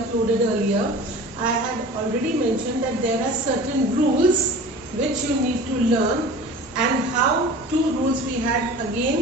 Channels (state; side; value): normal; both; correlation 0.40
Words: earlier, I had already mentioned that there are certain rules which you need to learn, and how two rules we had